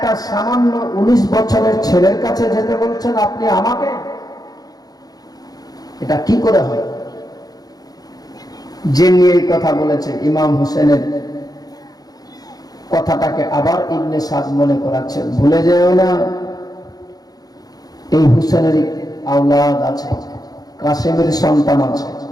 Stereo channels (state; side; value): late; right; 0.19 ms